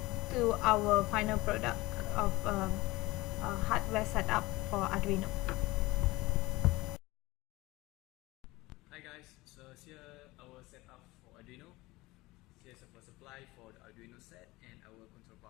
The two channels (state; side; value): quieter; right; 20.5 dB